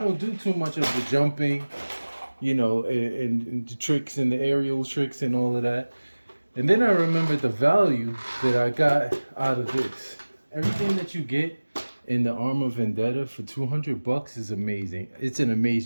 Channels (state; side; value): inverted; both; correlation -1.00